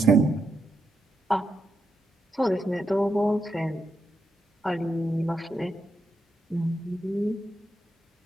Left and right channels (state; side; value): normal; both; correlation 0.83